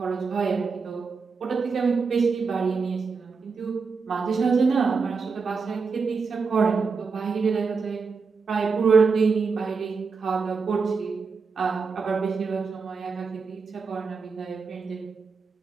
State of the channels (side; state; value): left; quieter; 5.0 dB